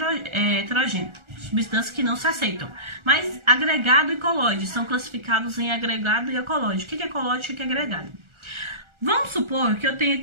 heterogêneo? Substâncias que não se aceitam. Mas agregado e colóide são classificados em agregado e colóide. O que é colóide e o que é agregado? Vamos supor que eu tenho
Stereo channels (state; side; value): late; left; 1.4 ms